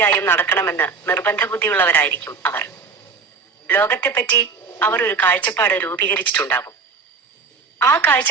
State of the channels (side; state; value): left; quieter; 4.9 dB